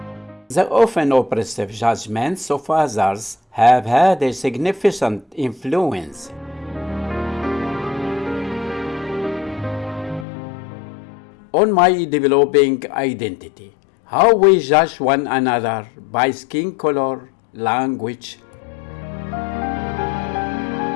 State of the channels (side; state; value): right; drops out; at 10.2 s